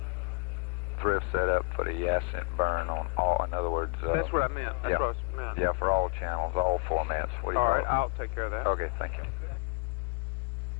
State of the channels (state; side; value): quieter; right; 33.4 dB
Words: thrift set up for the Ascent burn on all, in other words... That's what I meant. That's yeah. what I meant. Yeah, for all channels, all formats. What do you All call right, it? I'll take care of that. Okay, thank you.